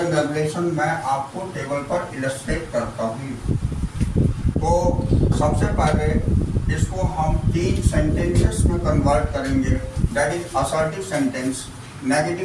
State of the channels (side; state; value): both; identical; correlation 1.00